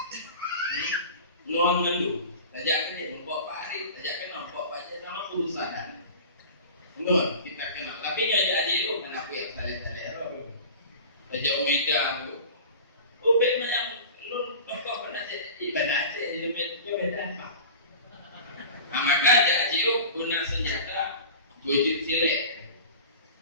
Nuan mendu, tajak kena membawa parit, tajak kena membawa baca sama urusan. Nuan kita kenal, tapi ngajak jauh kenapa ya tali-tali. Tajak Omega tu. Ubek macam lu tokoh pernah ibadah Aceh beda apa? Maka jadi guna senjata wujud silet.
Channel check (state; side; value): inverted; both; correlation -0.37